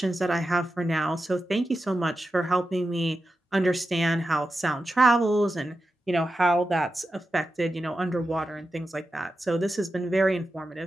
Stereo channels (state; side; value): normal; both; correlation 0.91